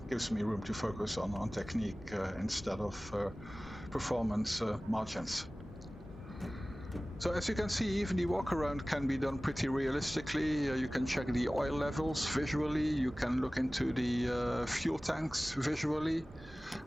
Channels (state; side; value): normal; both; correlation 0.98